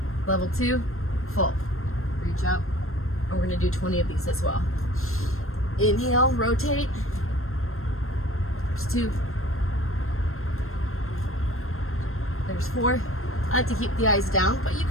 Level 2, full. Reach up, and we're going to do 20 of these as well. Inhale, rotate. There's 2. There's 4. I like to keep the eyes down, but you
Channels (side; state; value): right; late; 0.62 ms